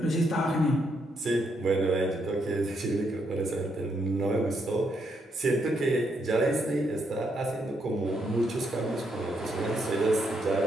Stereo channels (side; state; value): both; normal; correlation 0.77